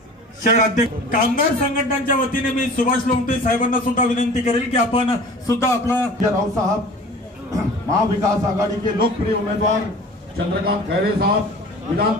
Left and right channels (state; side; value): normal; both; correlation 0.43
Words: शहर अध्यक्ष कामगार संघटनांच्या वतीने मी सुभाष लोमटे साहेबांना सुद्धा विनंती करेल की आपण सुद्धा आपला राव साहब, महाविकास आघाड़ी के लोकप्रिय उम्मीदवार चंद्रकांत खैरे साहब, विधान